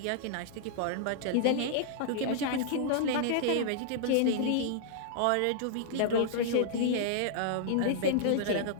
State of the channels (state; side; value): different; both; correlation -0.01